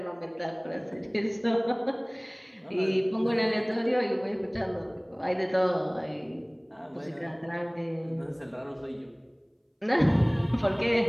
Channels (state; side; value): identical; both; correlation 1.00